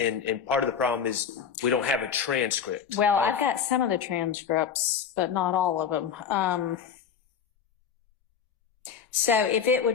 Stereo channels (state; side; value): quieter; right; 7.5 dB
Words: part of the problem is we don't have a transcript. Well, I've got some of the transcripts, but not all of them. So if it